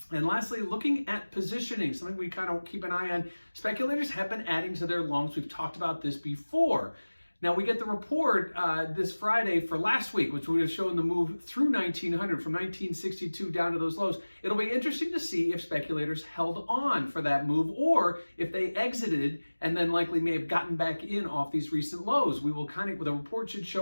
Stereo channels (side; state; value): both; inverted; correlation -1.00